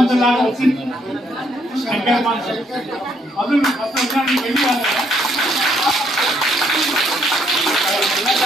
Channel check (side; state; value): both; normal; correlation 0.70